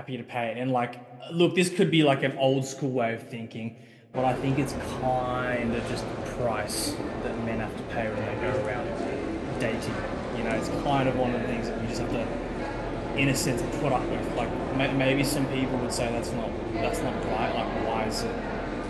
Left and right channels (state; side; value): identical; both; correlation 1.00